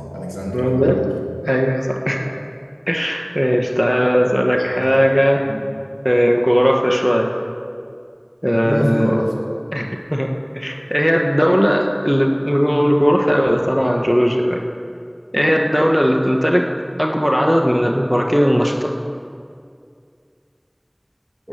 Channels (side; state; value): both; identical; correlation 1.00